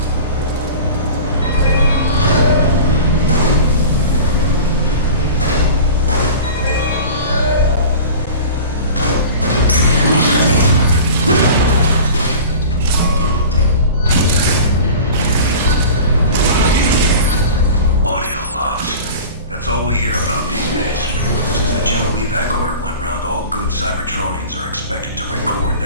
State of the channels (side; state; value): both; inverted; correlation -0.37